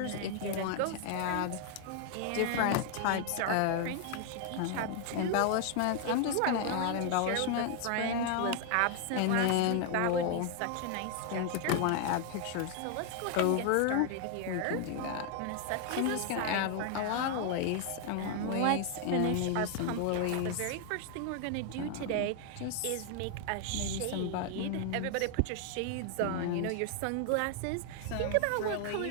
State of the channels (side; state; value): both; different; correlation 0.00